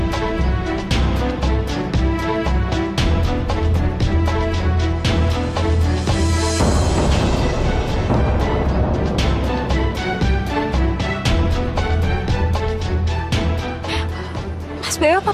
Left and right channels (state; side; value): identical; both; correlation 1.00